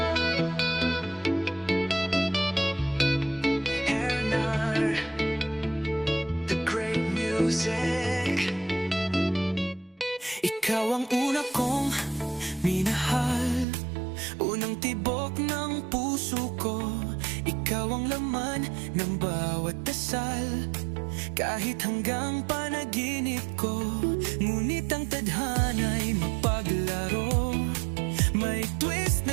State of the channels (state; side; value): drops out; left; at 13.7 s